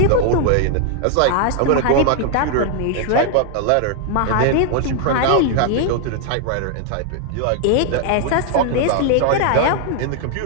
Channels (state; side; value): different; both; correlation 0.00